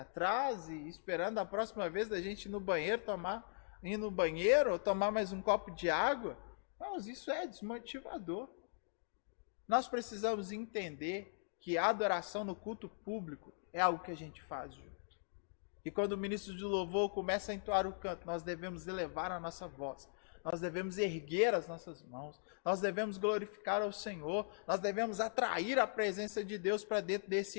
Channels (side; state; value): right; silent; digital silence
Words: trás e esperando a próxima vez da gente ir no banheiro ou tomar mais um copo de água. Mas isso é desmotivador. Nós precisamos entender que a adoração no culto público é algo que a gente faz junto. E quando o ministro de louvor começa a entoar o canto, nós devemos elevar a nossa voz. Nós devemos erguer as nossas mãos, nós devemos glorificar ao Senhor, nós devemos atrair a presença de Deus para dentro